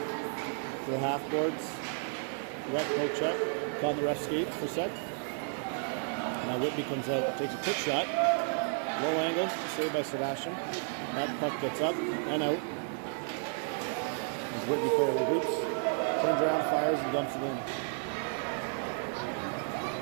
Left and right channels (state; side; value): silent; left; 56 dB below the other